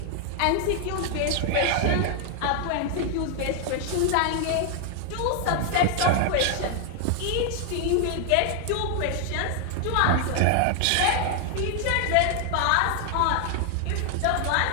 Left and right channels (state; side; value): different; both; correlation 0.00